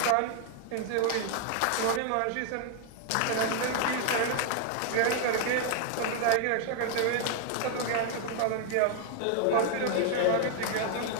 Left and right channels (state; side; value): different; both; correlation 0.00